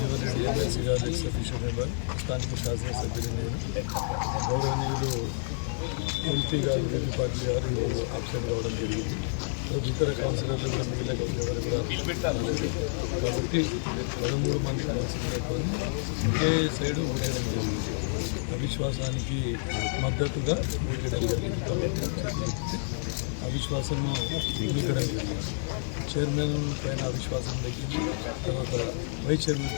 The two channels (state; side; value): silent; right; 59 dB below the other